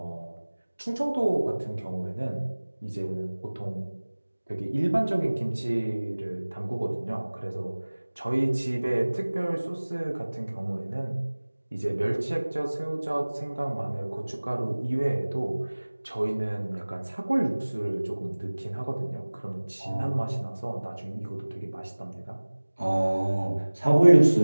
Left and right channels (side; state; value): both; inverted; correlation -1.00